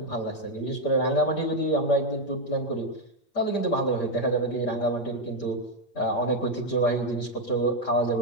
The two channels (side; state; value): right; late; 8.6 ms